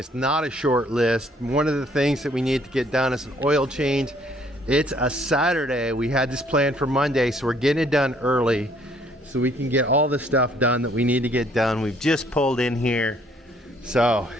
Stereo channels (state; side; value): normal; both; correlation 0.63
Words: not a short list. One of the things that we need to get done is an oil change. It's a Saturday. We had this planned for Monday, so we're getting it done early so we can get all the stuff done that we need to get done. We've just pulled in here, so